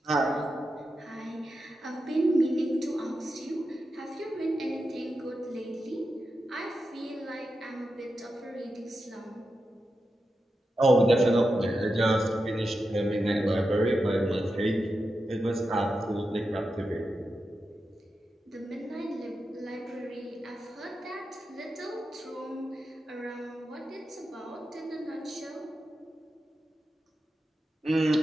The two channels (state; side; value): normal; both; correlation 0.89